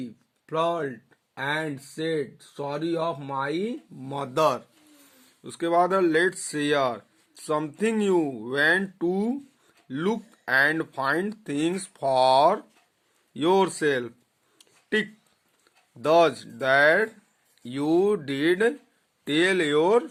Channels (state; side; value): identical; both; correlation 1.00